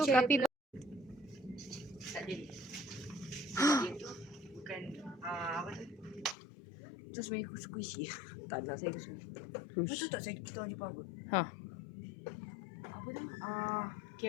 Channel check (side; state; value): right; drops out; at 6.4 s